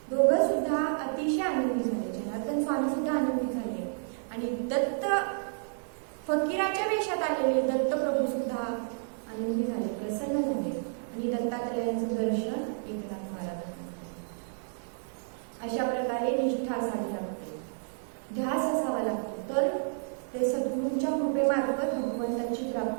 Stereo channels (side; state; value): left; silent; digital silence